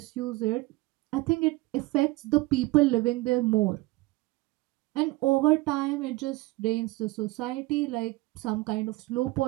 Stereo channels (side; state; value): left; quieter; 20.9 dB